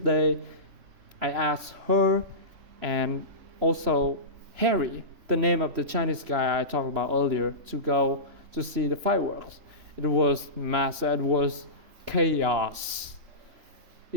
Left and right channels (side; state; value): left; late; 2.9 ms